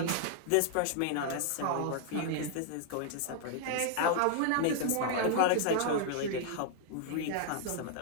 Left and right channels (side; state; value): both; different; correlation 0.00